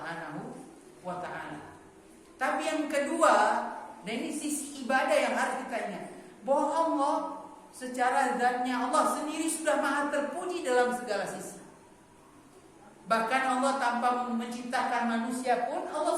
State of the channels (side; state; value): both; identical; correlation 1.00